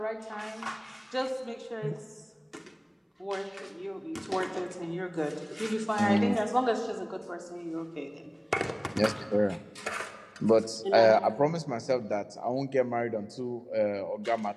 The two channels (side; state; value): both; identical; correlation 1.00